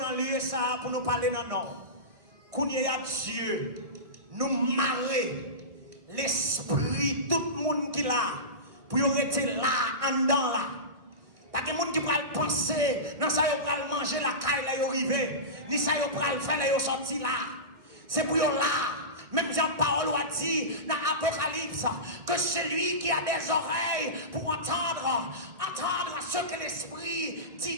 avons lieu ça pour nous parler dans nom. Qu'on y a Dieu, nous marrer l'esprit, tout le monde qui là, pour y rester là, en dedans là. Pas que les gens qui peuvent penser, non, ça y est, manger la caille là, y arriver, ni ça y est, faire là, y sortir là. C'est pour y là. Même Jean-Paul a dit dans l'Apocalypse que celui qui a des oreilles pour entendre ce que l'Esprit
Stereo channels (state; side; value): late; left; 1.6 ms